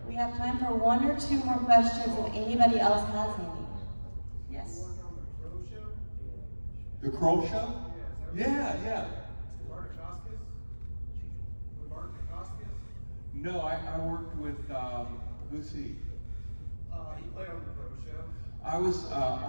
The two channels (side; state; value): both; inverted; correlation -1.00